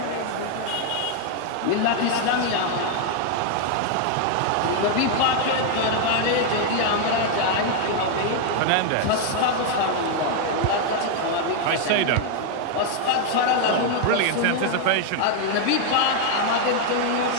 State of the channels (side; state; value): both; different; correlation 0.00